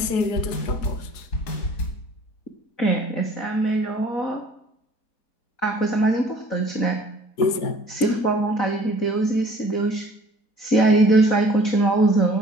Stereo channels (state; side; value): late; right; 4.7 ms